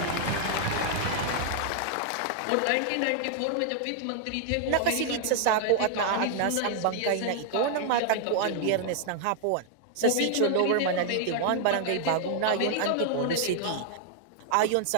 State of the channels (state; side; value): different; both; correlation 0.00